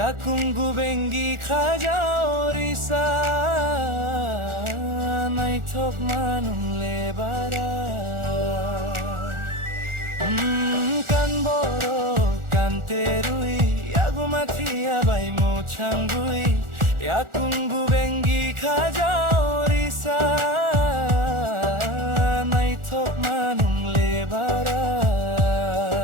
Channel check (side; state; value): left; late; 1.4 ms